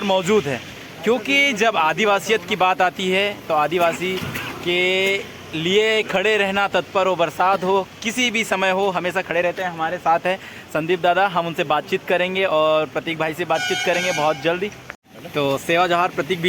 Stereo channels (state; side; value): identical; both; correlation 1.00